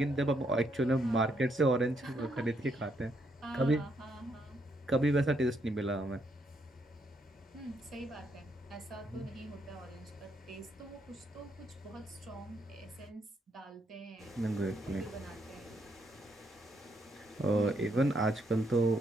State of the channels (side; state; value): both; normal; correlation 0.75